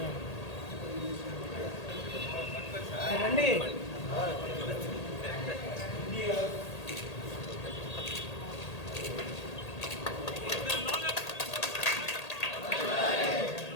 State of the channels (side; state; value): right; late; 1.8 ms